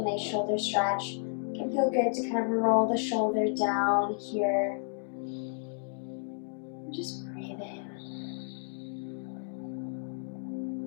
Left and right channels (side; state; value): right; silent; digital silence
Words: nice shoulder stretch. It can feel good to kind of roll the shoulder down here. And just breathe in.